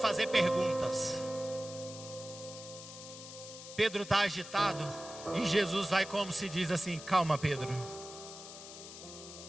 perguntas. Pedro está agitado e Jesus vai, como se diz assim: calma, Pedro,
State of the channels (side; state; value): left; noise; hiss, 13 dB below the sound